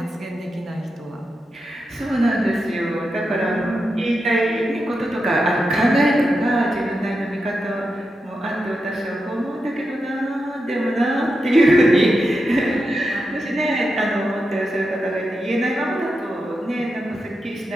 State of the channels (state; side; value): normal; both; correlation 0.88